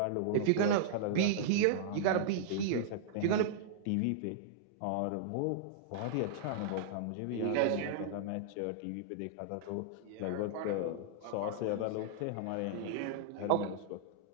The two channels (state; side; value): different; both; correlation -0.02